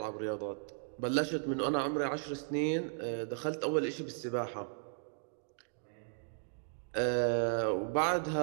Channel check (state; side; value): silent; left; digital silence